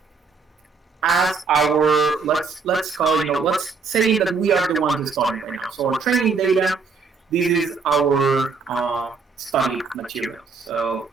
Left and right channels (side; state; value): left; quieter; 4.8 dB